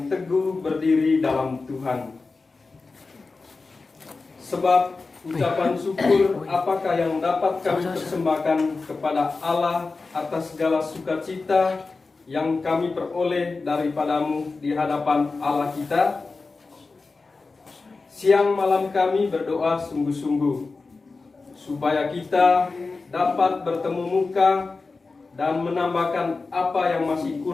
teguh berdiri dalam Tuhan. Sebab ucapan syukur apakah yang dapat kami persembahkan kepada Allah atas segala sukacita yang kami peroleh daripadamu di hadapan Allah kita? Siang malam kami berdoa sungguh-sungguh, supaya kita dapat bertemu muka dan menambahkan apa yang masih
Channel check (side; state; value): right; quieter; 4.0 dB